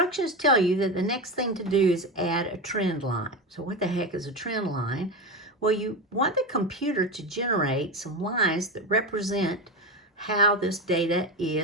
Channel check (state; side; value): normal; both; correlation 0.18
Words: tell you that the next thing to do is add a trend line. So what the heck is a trend line? Well, you want the computer to generate some lines that represent how this data